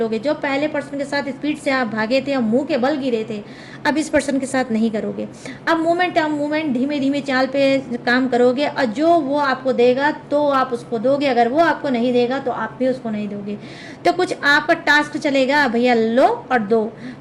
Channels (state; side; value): identical; both; correlation 1.00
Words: जो पहले पर्सन के साथ स्पीड से आप भागे थे और मुंह के बल गिरे थे, अब इस पर्सन के साथ नहीं करोगे। अब मूवमेंट धीमे धीमे चाल पे काम करोगे और जो वो आपको देगा तो आप उसको दोगे, अगर वो आपको नहीं देगा तो आप भी उसको नहीं दोगे। तो कुछ आपका टास्क चलेगा, भैया लो और दो।